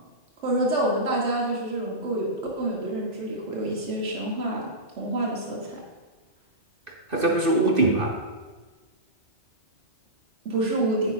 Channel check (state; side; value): late; left; 2.6 ms